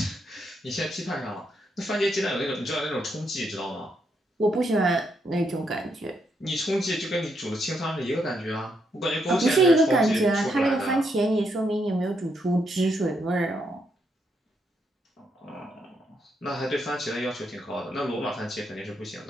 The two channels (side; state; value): both; normal; correlation 0.78